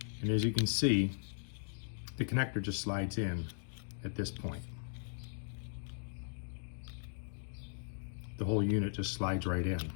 And as you can see, the connector just slides in at this point. The whole unit just slides right in.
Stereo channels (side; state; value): right; silent; digital silence